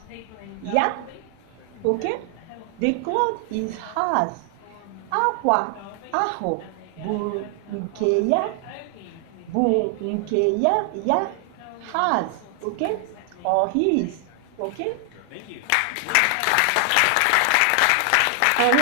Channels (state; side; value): different; both; correlation 0.00